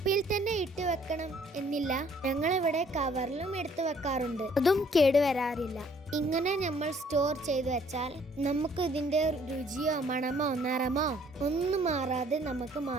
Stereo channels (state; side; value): normal; both; correlation 0.61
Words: തന്നെ ഇട്ട് വെക്കണം എന്നില്ല, ഞങ്ങളിവിടെ കവറിലും എടുത്തു വെക്കാറുണ്ട്. അതും കേടുവരാറില്ല. ഇങ്ങനെ നമ്മൾ സ്റ്റോർ ചെയ്ത് വെച്ചാൽ നമുക്ക് ഇതിന്റെ രുചിയോ മണമോ നിറമോ ഒന്നും മാറാതെ നമുക്ക്